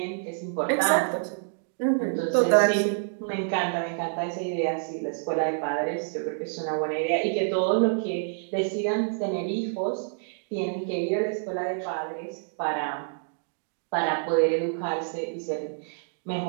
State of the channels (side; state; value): left; silent; digital silence